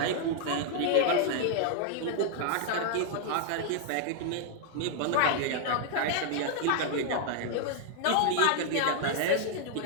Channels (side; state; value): both; different; correlation -0.01